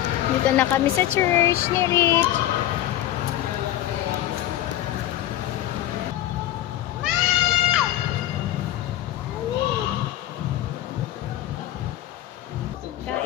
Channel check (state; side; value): quieter; right; 13.4 dB